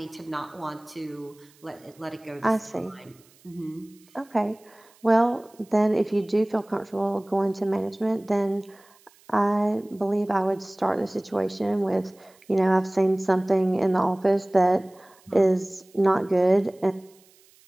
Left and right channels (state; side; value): noise; right; hiss, 30 dB below the sound